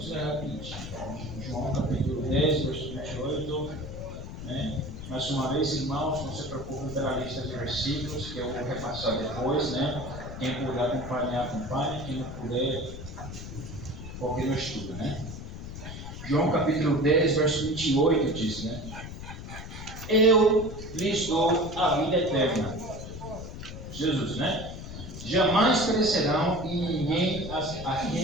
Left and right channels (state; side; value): noise; left; rumble, 10 dB below the sound